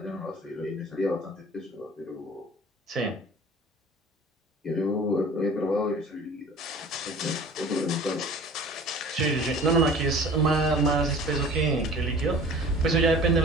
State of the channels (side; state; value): both; normal; correlation 0.44